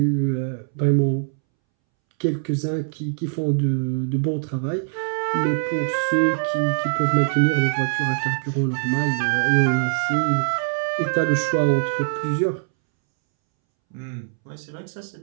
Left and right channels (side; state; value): left; silent; 64 dB below the other